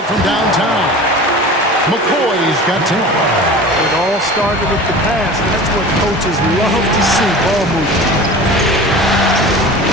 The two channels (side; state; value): both; normal; correlation 0.37